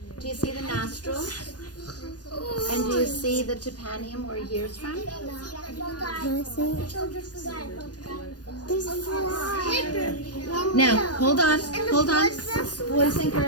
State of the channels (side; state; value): right; late; 0.69 ms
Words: Do you see the nostrils? And do you see the tympanum where he hears from? There's a fly. Now, hold on. Boys and